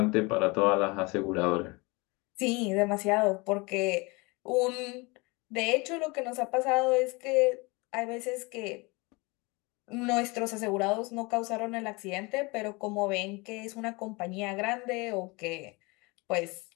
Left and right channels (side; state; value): right; quieter; 26.3 dB